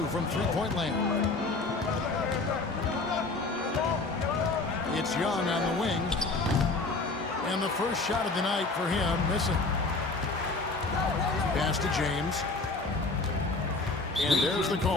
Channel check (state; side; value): quieter; right; 3.5 dB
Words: from three-point land. It's Young on the wing. And the first shot of the night for him, missing. Pass to James. And there's the